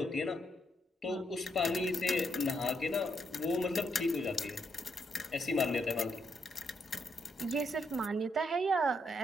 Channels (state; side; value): normal; both; correlation 0.77